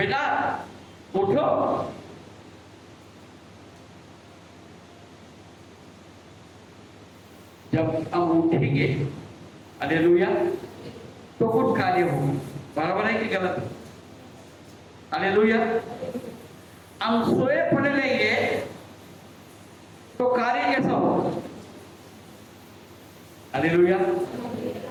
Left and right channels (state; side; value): identical; both; correlation 1.00